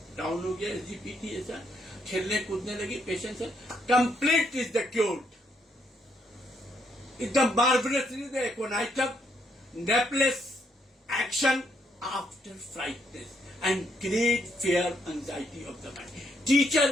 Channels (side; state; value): both; normal; correlation 0.74